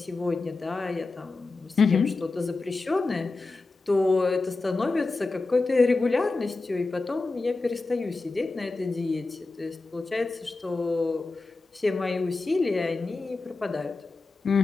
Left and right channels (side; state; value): right; quieter; 3.5 dB